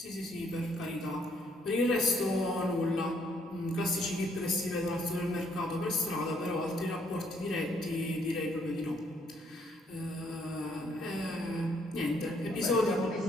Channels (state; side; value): normal; both; correlation 0.68